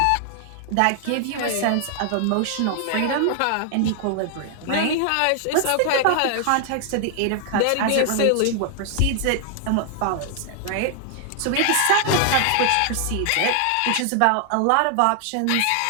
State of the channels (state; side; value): different; both; correlation 0.00